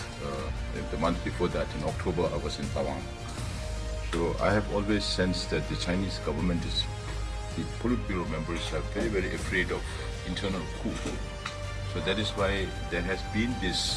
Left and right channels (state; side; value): identical; both; correlation 1.00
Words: the month before that, in October, I was in Tawang. So I have always sensed that the Chinese government the Politburo members are very, very afraid of internal coup. So that is why there has been